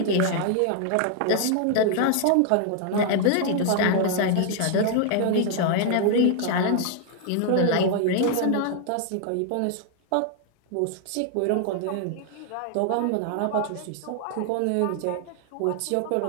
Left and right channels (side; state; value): both; different; correlation 0.00